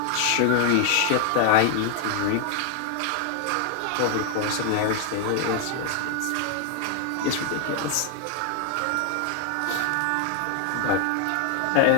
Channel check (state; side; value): different; both; correlation 0.00